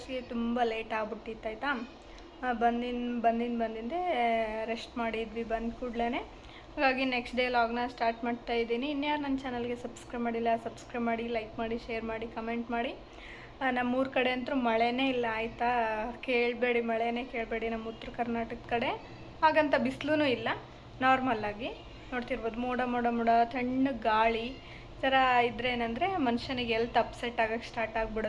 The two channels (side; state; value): both; identical; correlation 1.00